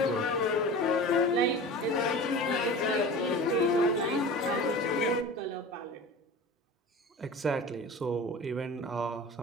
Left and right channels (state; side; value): normal; both; correlation 0.35